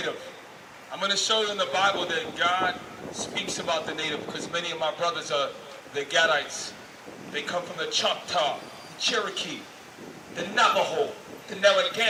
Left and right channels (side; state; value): both; identical; correlation 1.00